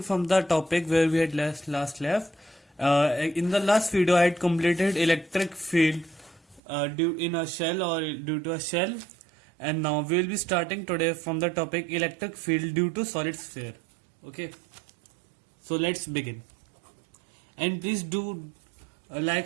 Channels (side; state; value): left; drops out; at 6.6 s